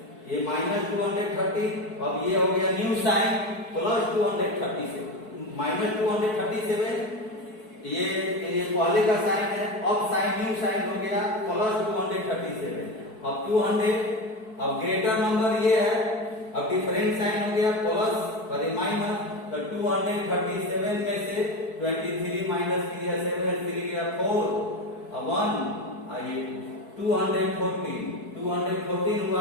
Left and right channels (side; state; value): right; late; 4.6 ms